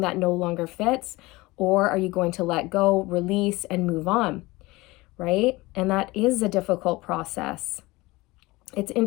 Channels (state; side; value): quieter; right; 21.4 dB